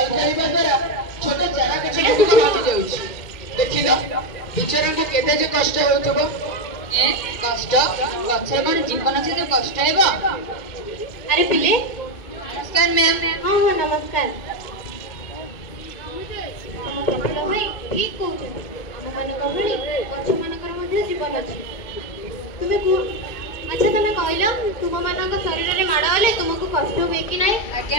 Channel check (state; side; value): late; right; 2.4 ms